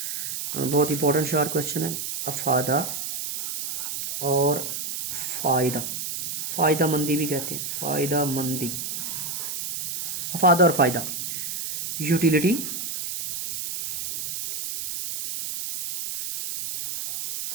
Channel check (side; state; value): right; noise; hiss, 4 dB below the sound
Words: بہت امپورٹنٹ شارٹ کوسچن ہے. افادہ اور فائدہ مندی بھی کہتے ہیں، فائدہ مندی. افادہ اور فائدہ، utility